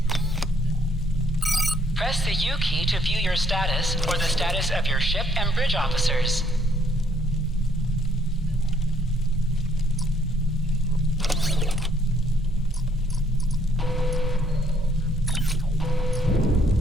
Press the U key to view your status or the status of your ship and bridge officers.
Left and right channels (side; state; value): both; normal; correlation 0.67